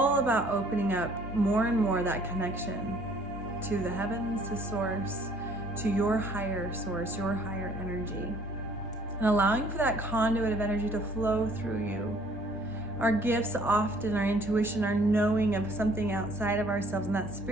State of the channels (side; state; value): both; normal; correlation 0.58